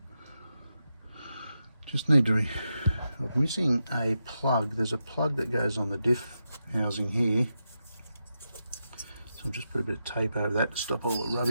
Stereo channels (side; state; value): both; inverted; correlation -0.87